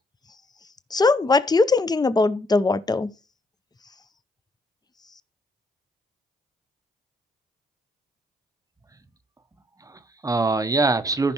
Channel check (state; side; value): normal; both; correlation 0.70